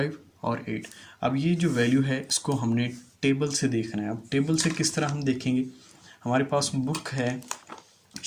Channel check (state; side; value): identical; both; correlation 1.00